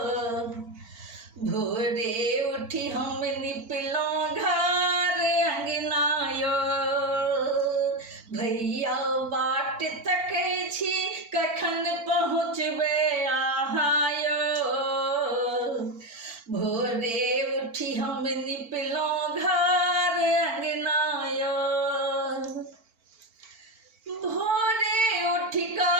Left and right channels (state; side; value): late; left; 4.4 ms